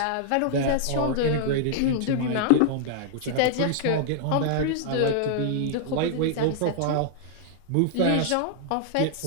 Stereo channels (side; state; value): both; different; correlation -0.01